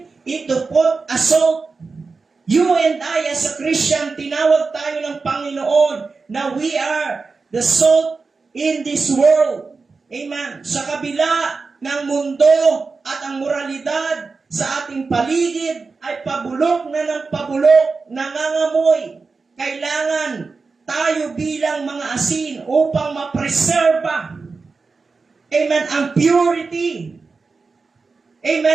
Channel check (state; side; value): quieter; left; 4.3 dB